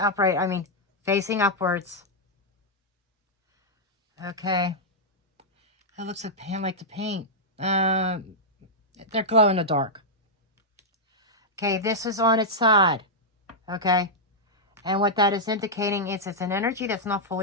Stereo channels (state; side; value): normal; both; correlation -0.07